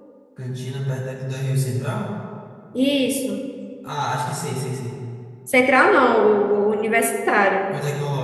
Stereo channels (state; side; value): identical; both; correlation 1.00